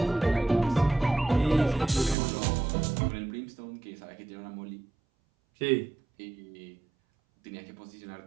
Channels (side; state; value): left; drops out; at 2.1 s